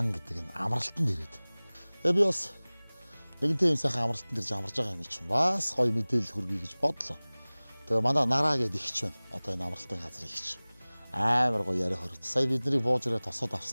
гэдэг нь амралтанд ирээд. Тэгээ би бас нэгэнтэй юм сайхан амралтанд ирж амарж байгаа юм чинь бас гоё мэдээлэл хүргэе гэж бодлоо. Тэгээ манай нараа гэдэг ихч байна. Одоо энэ амралтын газрын ихч. Амар гоё яриа хорт. Сая бидний бууж ирээ тосоод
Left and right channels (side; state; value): both; inverted; correlation -1.00